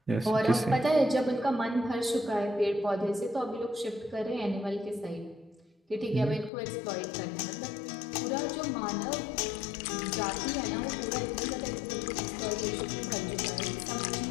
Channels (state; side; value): drops out; right; at 6.5 s